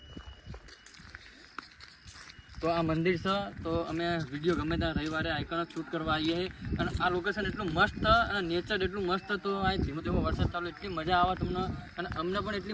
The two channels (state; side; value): identical; both; correlation 1.00